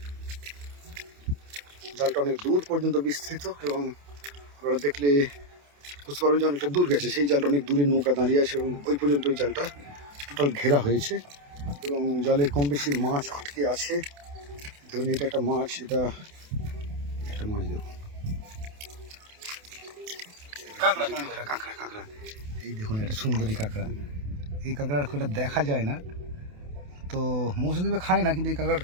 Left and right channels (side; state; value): left; late; 28 ms